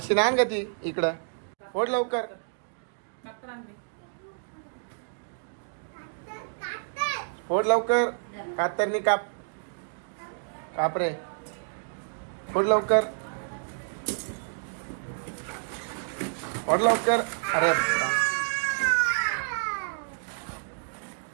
आण का ती इकडं. फोड लवकर. फोड लवकर. कातरनी काप. काप रे. फोड लवकर. फोड लवकर. अरे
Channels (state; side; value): silent; left; digital silence